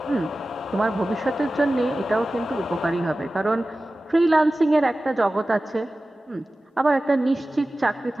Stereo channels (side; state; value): both; normal; correlation 0.96